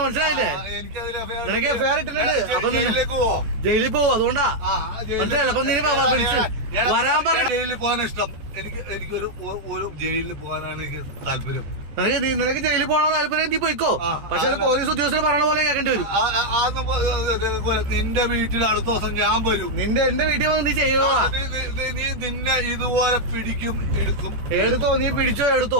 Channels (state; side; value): late; left; 14 ms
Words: മനസ്സിലായില്ലേ, നിനക്ക് ഫെയർ ഇട്ടിട്ടുണ്ട്. അപ്പൊ ജയിലിൽ പോവും, അതുകൊണ്ടാ മനസ്സിലായില്ല. അപ്പൊ നീ വരാൻ പറഞ്ഞു. ജയിലിൽ പോകാൻ ഇഷ്ടം എനിക്കൊരു ജയിലിൽ പോകാനാണ് എനിക്ക് താല്പര്യം. നിനക്ക് ജയിലിൽ പോകണ താല്പര്യം, നീ പോയിക്കോ. പക്ഷെ പോലീസ് ഉദ്യോഗസ്ഥർ പറയണ പോലെ കേൾക്കേണ്ടി വരും. നിന്റെ വീട്ടിൽ അടുത്ത ദിവസം ഞാൻ വരും. എന്റെ വീട്ടിൽ വന്ന് നീ ചെയ്യുക. നീ നിന്നെ ഇതുപോലെ പിടിക്കും, എടുക്കും. എടുത്തോ, നീ പിടിച്ചോ, എടുത്തോ.